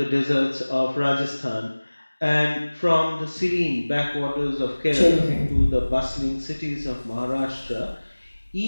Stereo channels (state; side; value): inverted; both; correlation -1.00